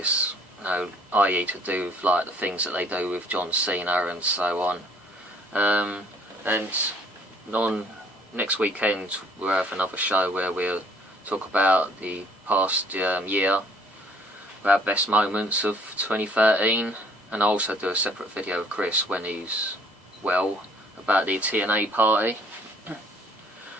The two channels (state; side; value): normal; both; correlation 0.59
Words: you know, i.e. to do with like the things that they do with John Cena and so on. And on next weekend we'll have another show where we'll talk about the past year, our best moments of 2013, and I'll also do a separate video of Chris when he's well about the TNA party.